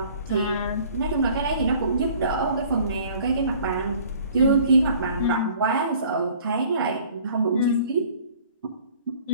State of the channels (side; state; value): both; inverted; correlation -0.52